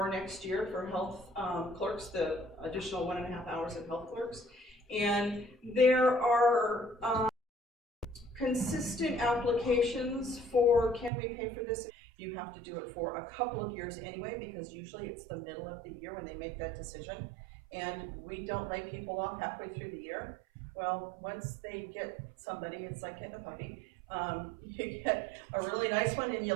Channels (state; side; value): drops out; left; at 11.1 s